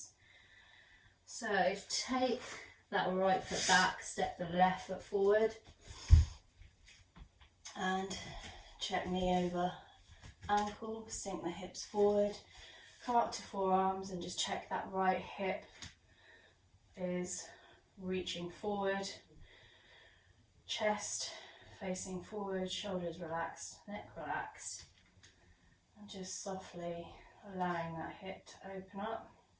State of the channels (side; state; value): both; identical; correlation 1.00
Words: So take that right foot back, step the left foot forward, and check knee over ankle, sink the hips forward, come up to forearms and just check that right hip is reaching forward, chest facing forward, shoulders relaxed, neck relaxed, and just softly allowing that hip to open up.